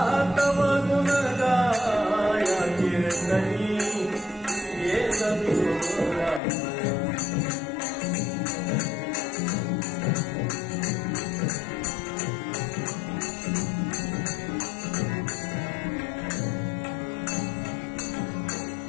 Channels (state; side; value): drops out; right; at 6.4 s